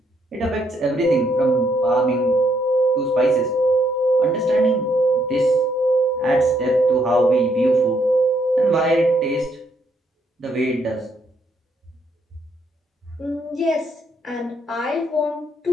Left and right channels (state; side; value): normal; both; correlation 0.73